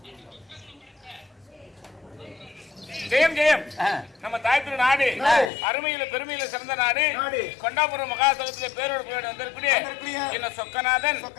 ஜெயம் ஜெயம். நம்ம தாய்த்திரு நாடு அருமையில பெருமையில சிறந்த நாடு. கொண்டாபுரம் மகாசபத்திலே பேரோடு போய் வந்திருக்கூடிய என்ன சொக்கநாதன்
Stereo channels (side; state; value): right; drops out; at 5.5 s